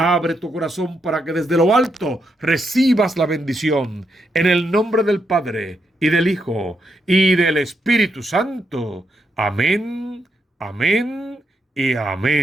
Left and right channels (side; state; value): both; normal; correlation 0.81